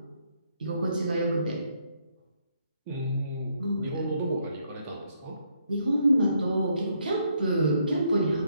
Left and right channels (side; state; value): both; inverted; correlation -0.73